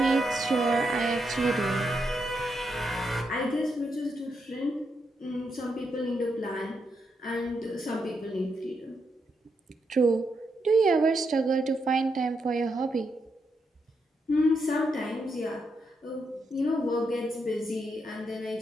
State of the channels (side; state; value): both; normal; correlation 0.81